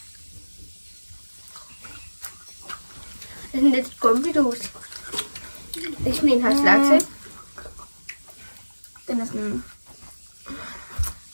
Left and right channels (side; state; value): both; inverted; correlation -1.00